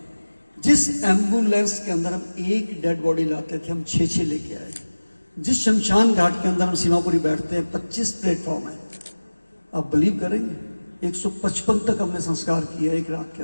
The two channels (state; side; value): inverted; both; correlation -1.00